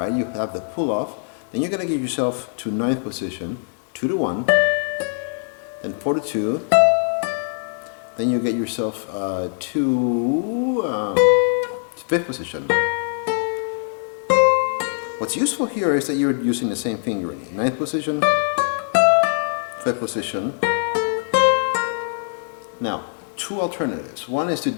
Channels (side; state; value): right; silent; digital silence